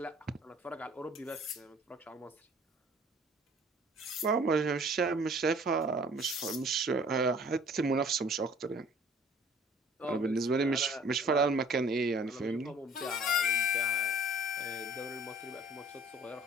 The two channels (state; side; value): normal; both; correlation 0.52